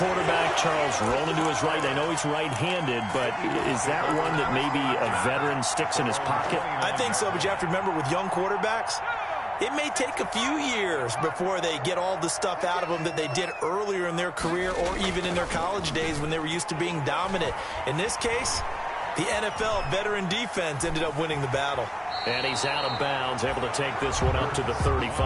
Charles, rolling to his right. I know he's right-handed, but is that one that maybe a veteran sticks in his pocket? I think so, but you have to remember with young quarterbacks, it may take a few years before they get all the stuff out of them that they did earlier in their career or even in their college days when they were used to being dominant. In this case, the NFL veteran defense ended up winning the battle. And he's out of bounds, able to take this one up to the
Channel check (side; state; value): both; identical; correlation 1.00